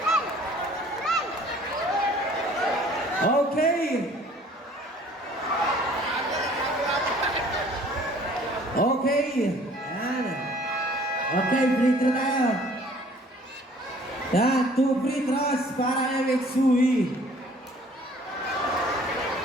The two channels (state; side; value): normal; both; correlation 0.54